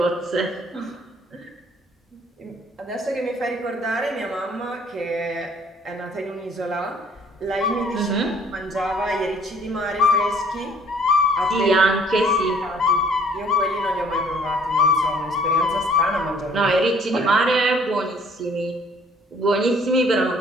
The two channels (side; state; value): both; normal; correlation 0.58